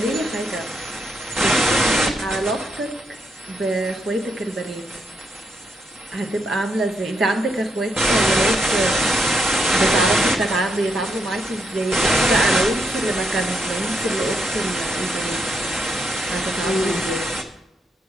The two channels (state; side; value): normal; both; correlation 0.79